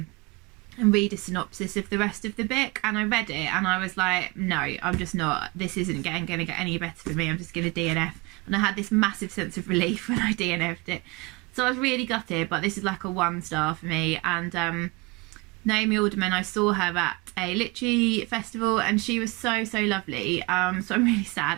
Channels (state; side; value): quieter; left; 25.8 dB